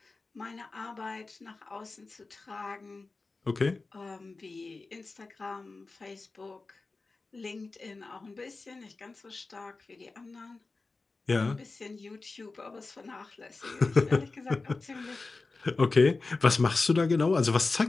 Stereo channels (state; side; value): quieter; right; 3.7 dB